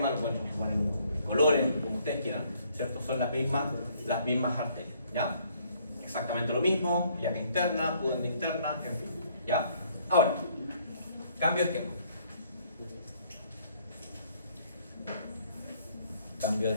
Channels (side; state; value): both; inverted; correlation -0.64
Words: lo pueden transformar en colores, como ustedes quieran, ¿cierto? Son las mismas arterias, ¿ya? Exactamente lo mismo, ilíaca interna, pudenda interna, en fin, ¿ya? Ahora, cambio de esquema. Cambio de